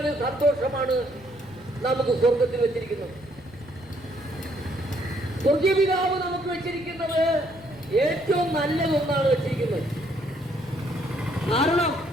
സന്തോഷമാണ് നമുക്ക് സ്വർഗത്തിൽ വെച്ചിരിക്കുന്നത്. സ്വർഗീയ പിതാവ് നമുക്ക് വെച്ചിരിക്കുന്നത് ഏറ്റവും നല്ലതൊന്നാണ് വെച്ചിരിക്കുന്നത്. കാരണം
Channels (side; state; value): left; noise; rumble, 23 dB below the sound